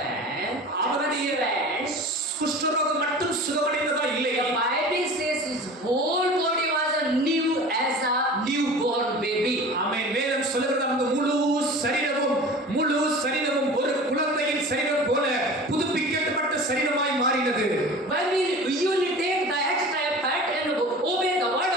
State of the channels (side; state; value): both; normal; correlation 0.38